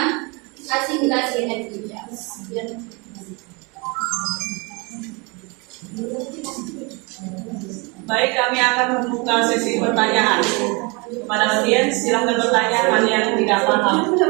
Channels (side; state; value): left; quieter; 29.0 dB